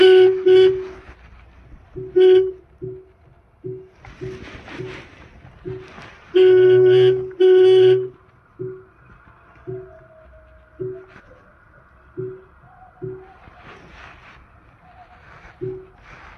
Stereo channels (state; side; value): identical; both; correlation 1.00